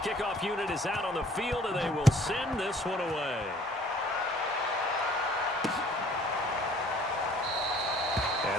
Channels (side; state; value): both; normal; correlation 0.55